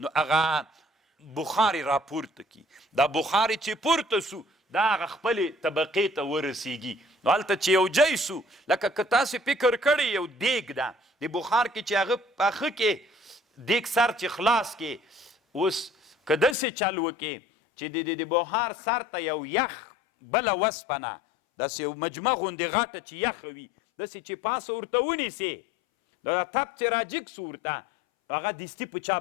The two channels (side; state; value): right; drops out; at 16.6 s